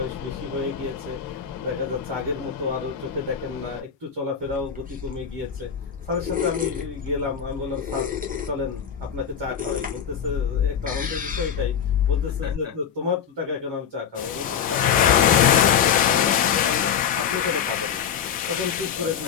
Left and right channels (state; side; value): quieter; right; 7.8 dB